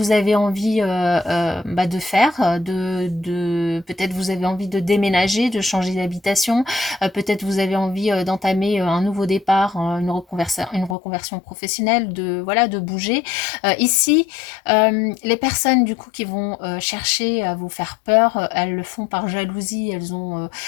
avez envie de faire, peut-être vous avez envie de déménager, de changer d'habitation, peut-être vous avez envie d'entamer un nouveau départ, une reconversion professionnelle, de bouger. Ici, les personnes du coup qui vont chercher à vous faire peur, elles le font par jalousie,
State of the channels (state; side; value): drops out; right; at 11.0 s